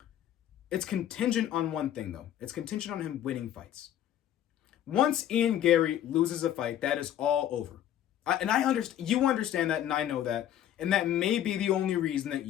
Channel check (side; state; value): right; quieter; 11.2 dB